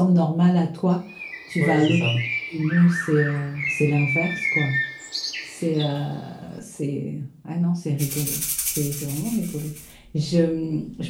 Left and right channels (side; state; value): both; identical; correlation 1.00